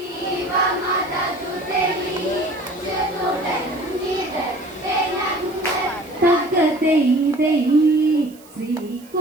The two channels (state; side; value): noise; right; hiss, 25 dB below the sound